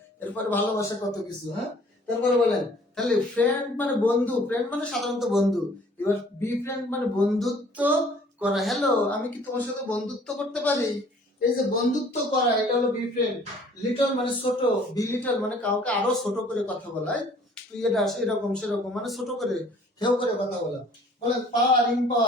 এরপরে ভালোবাসা কত কিছু। হ্যাঁ, তারপরে বলেন তাহলে ফ্রেন্ড মানে বন্ধু, ফ্রেন্ড মানে সাধারণত বন্ধু, এবার বি ফ্রেন্ড মানে বন্ধুত্ব করা। হ্যালো আমি কি তোমার সাথে বন্ধুত্ব করতে পারি, এই যে বন্ধুত্ব করা এটা হলো বি ফ্রেন্ড। লিটল মানে ছোট, বি লিটল মানে কাউকে আরো ছোট করে কথা বলা, তুই এটা এরকম সেরকম মানে ছোট করে হেউ করে কথা বলা। বলেন পাওয়ার,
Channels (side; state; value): both; normal; correlation 0.55